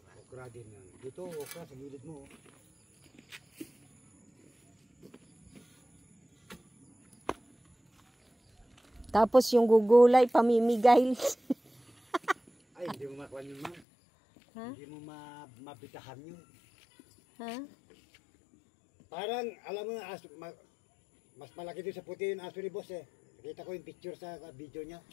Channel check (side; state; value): right; drops out; at 13.8 s